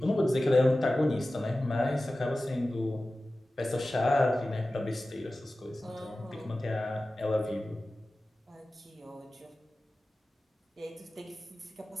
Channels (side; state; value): both; normal; correlation 0.95